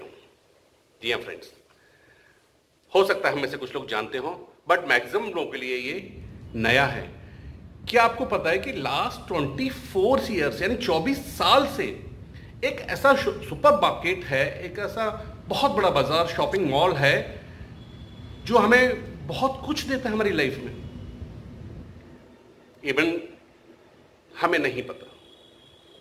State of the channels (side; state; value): both; identical; correlation 1.00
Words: हूं। जी हाँ फ्रेंड्स, हो सकता है हम में से कुछ लोग जानते हो, बट मैक्सिमम लोगों के लिए ये नया है। क्या आपको पता है कि लास्ट 24 ईयर्स यानी 24 साल से एक ऐसा सुपर मार्केट है, एक ऐसा बहुत बड़ा बाजार, शॉपिंग मॉल है जो हमें बहुत कुछ देता है हमारी लाइफ में। इवन हमें नहीं पता